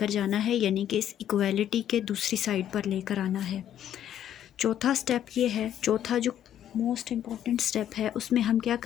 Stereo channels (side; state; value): right; quieter; 10.6 dB